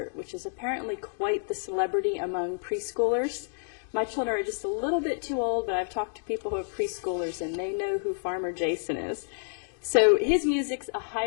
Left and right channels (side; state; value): right; silent; digital silence